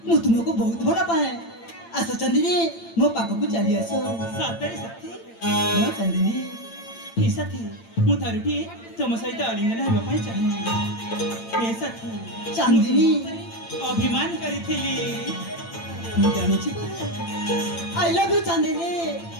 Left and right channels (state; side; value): late; right; 8.8 ms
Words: ମୁଁ ତୁମକୁ ବହୁତ ଭଲ ପାଏ ଆସ ଚାନ୍ଦିନୀ ମୋ ପାଖକୁ ଚାଲି ଆସ ସତରେ ସାଥୀ ହଁ ଚାନ୍ଦିନୀ ହେ ସାଥୀ ମୁଁ ଥରୁଟିଏ ତମ ସହିତ ଆଲିଙ୍ଗନ ହେବା ପାଇଁ ଚାହେଁ ହେ ସାଥୀ ଚାନ୍ଦିନୀ ଅଭିମାନ କରିଥିଲି ମୁଁ ଜାଣିଛି ପରା I love you Chandini